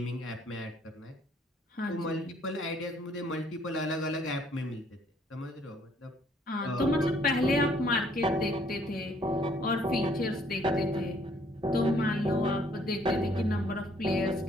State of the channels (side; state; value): both; normal; correlation 0.64